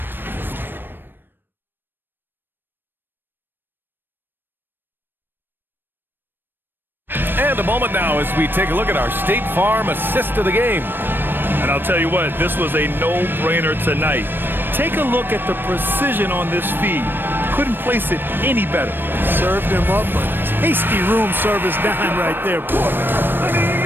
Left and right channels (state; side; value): late; left; 0.096 ms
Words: And a moment now as we take a look at our State Farm assist of the game. And I'll tell you what, this was a no-brainer tonight. Take a look at the precision on this feed. Couldn't place it any better. Served him up a tasty room service dime right there, boy.